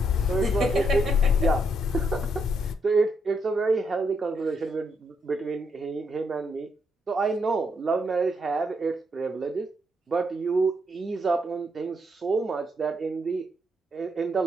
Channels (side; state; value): both; normal; correlation 0.76